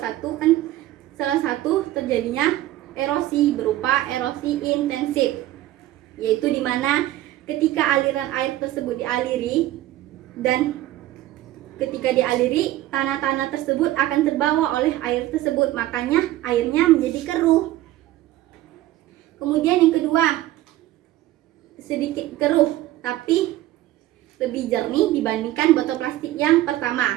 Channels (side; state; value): left; quieter; 15.1 dB